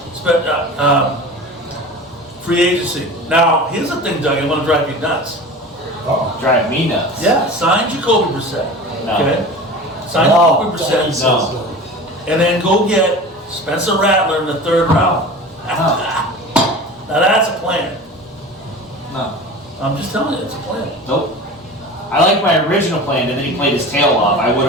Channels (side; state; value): both; normal; correlation 0.35